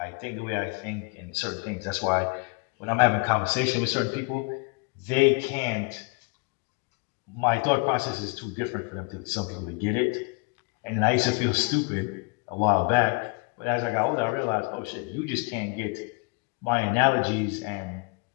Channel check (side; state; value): right; quieter; 32.5 dB